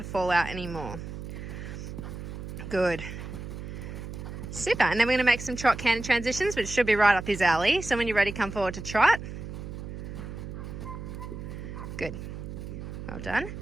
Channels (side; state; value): right; noise; hum, 8 dB below the sound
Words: fall out anymore. Good. Super. And then we're going to make some trot canter transitions, which should be right up his alley. So when you're ready, come forward to trot. Good. Well done.